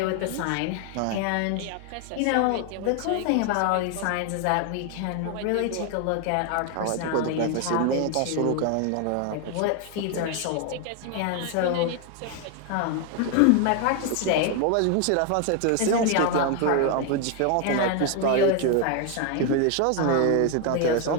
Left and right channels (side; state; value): both; different; correlation 0.01